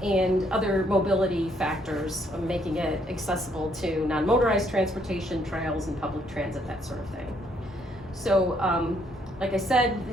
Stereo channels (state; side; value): normal; both; correlation 0.69